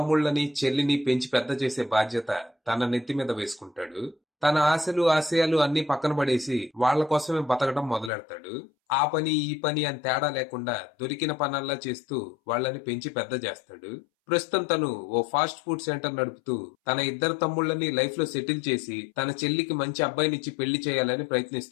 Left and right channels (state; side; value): drops out; right; at 8.1 s